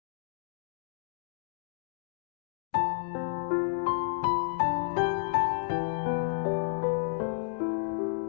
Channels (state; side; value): silent; right; digital silence